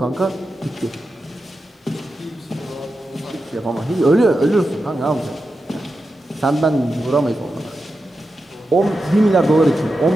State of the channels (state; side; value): normal; both; correlation 0.90